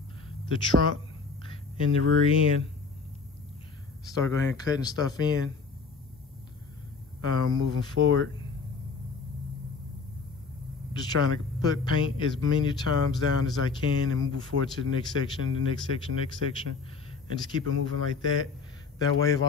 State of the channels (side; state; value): right; quieter; 4.6 dB